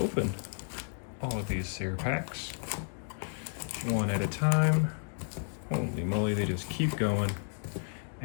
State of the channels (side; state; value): right; silent; 56 dB below the other